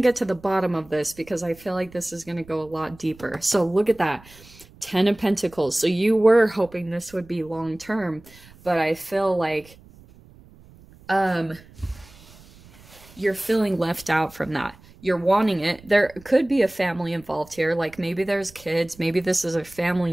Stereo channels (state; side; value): noise; right; rumble, 24 dB below the sound